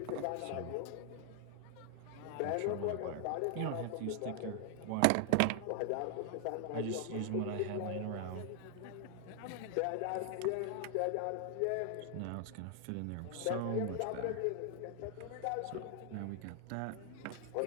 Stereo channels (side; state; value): both; different; correlation 0.00